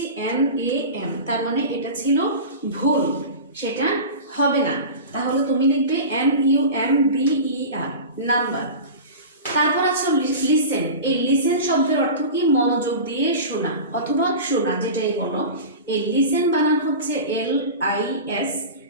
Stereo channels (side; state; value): both; inverted; correlation -0.31